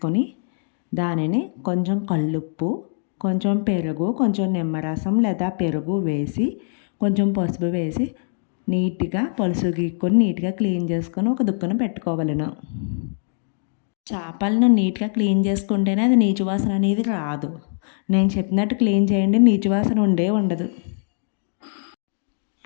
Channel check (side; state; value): right; silent; digital silence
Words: దానిని కొంచెం కల్లుప్పు, కొంచెం పెరుగు, కొంచెం నిమ్మరసం లేదా పెరుగు వేసి కొంచెం పసుపు వేసి నీట్గా పులుసు గీక్కొని నీట్గా క్లీన్ చేసుకొని ఒక దుక్కున పెట్టుకోవాలను. చేపలను నీట్గా క్లీన్ చేసుకుంటేనే అది నీచు వాసన అనేది రాదు. నేను చెప్పినట్టు క్లీన్ చేయండి, నీచు వాసన ఉండదు.